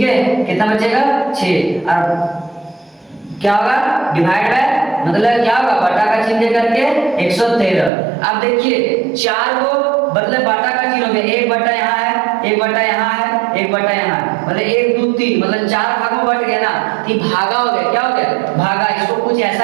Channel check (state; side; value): drops out; left; at 7.9 s